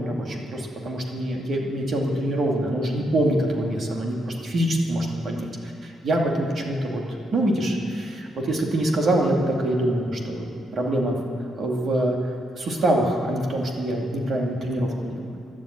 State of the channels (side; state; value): both; normal; correlation 0.78